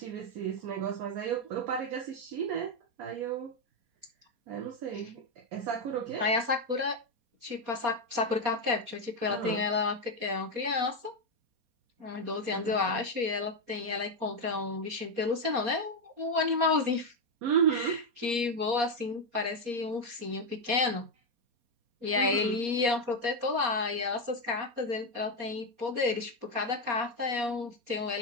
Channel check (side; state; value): left; late; 4.2 ms